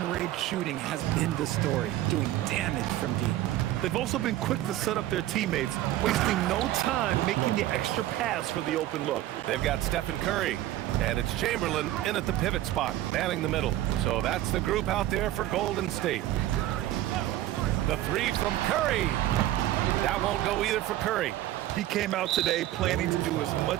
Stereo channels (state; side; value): quieter; left; 14.4 dB